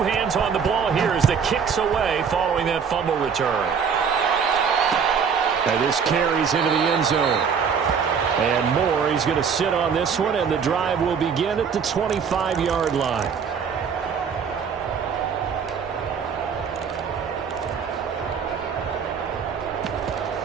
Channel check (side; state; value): left; quieter; 6.6 dB